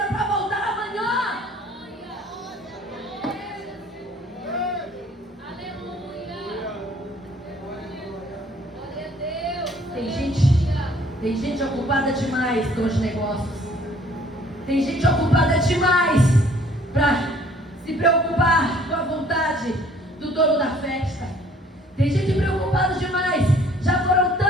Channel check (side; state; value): both; normal; correlation 0.57